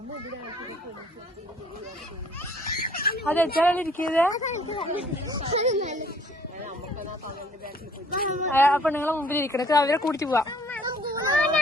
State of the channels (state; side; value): normal; both; correlation 0.58